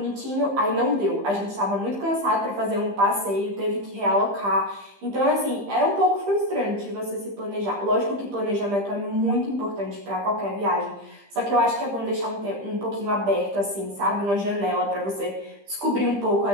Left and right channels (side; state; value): left; late; 15 ms